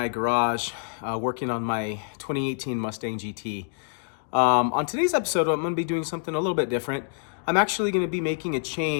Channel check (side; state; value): right; silent; digital silence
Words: garage working on my 2018 Mustang GT. On today's episode, I'm going to be doing something a little bit different. I'm actually going to be making a